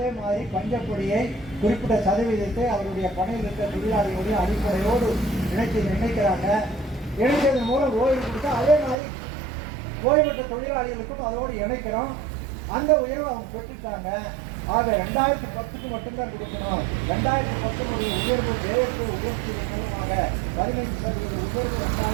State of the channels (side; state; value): left; drops out; at 9.0 s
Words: மாதிரி பஞ்சப்பொடியை குறிப்பிட்ட சதவீதத்தை அவருடைய பணியில் இருக்கிற தொழிலாளிகளுடைய அடிப்படையோடு இணைக்கிறாங்க. இணைத்ததன் மூலம் ஓய்வு கொடுத்தா அதே மாதிரி ஓய்வு பெற்ற தொழிலாளிகளுக்கும் அதோடு இணைக்கிறோம். அந்த உயர்வு அவங்க பெற்றுட்டாங்க. ஆக 2010க்கு மட்டும்தான் கொடுக்கணும். 2010 உயர்வு தேர்வு உயர்த்தியதன் மூலமாக 15% உயர்வு